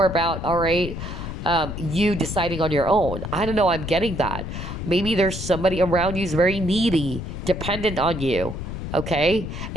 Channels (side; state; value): left; noise; rumble, 6 dB below the sound